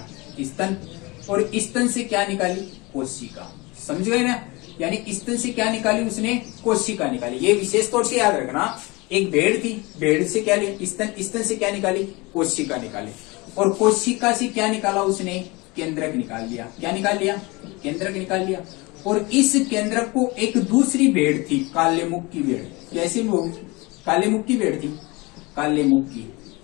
स्तन, और स्तन से क्या निकाली, कोशिका। समझ गए ना, यानी स्तन से क्या निकाली उसने, कोशिका निकाली। ये विशेष तौर से याद रखना, एक भेड़ थी, भेड़ से क्या लिया, स्तन, स्तन से क्या निकाली, कोशिका निकाली, और कोशिका से क्या निकाला उसने, केंद्रक निकाल लिया। क्या निकाल लिया, केंद्रक निकाल लिया। और इस केंद्रक को एक दूसरी भेड़ थी, काले मुख की भेड़। कैसी मुख, काले मुख की भेड़ थी, काले मुख की,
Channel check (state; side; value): quieter; right; 24.7 dB